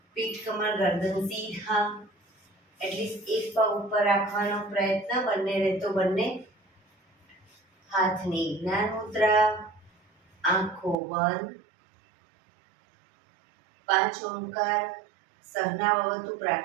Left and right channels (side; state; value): left; drops out; at 11.0 s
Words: પીઠ કમર ગરદન સીધા, એટલીસ્ટ એક પગ ઉપર રાખવાનો પ્રયત્ન, બંને રહેતો બંને હાથની જ્ઞાન મુદ્રા, આંખો બંધ. 5 ઓમકાર સહના ભવતુ